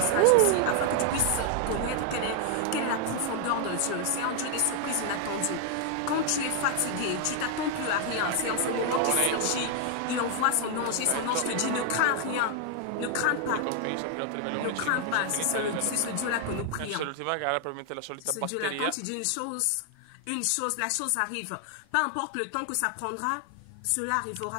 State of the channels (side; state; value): both; different; correlation 0.00